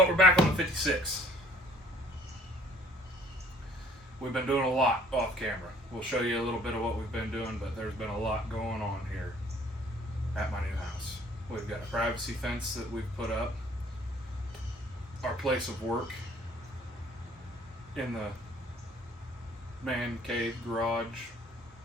we're back on the 56. We've been doing a lot off camera. We'll show you a little bit of what we've been doing, but there's been a lot going on here at my new house. We've got a privacy fence that we've put up. Our place of work in the man cave, garage,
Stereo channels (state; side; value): normal; both; correlation 0.57